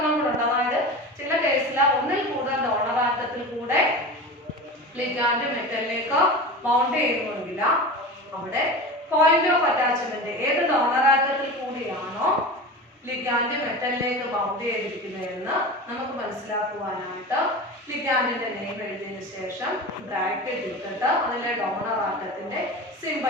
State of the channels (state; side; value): normal; both; correlation 0.30